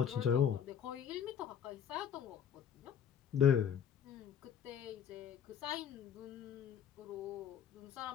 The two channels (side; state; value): right; quieter; 8.3 dB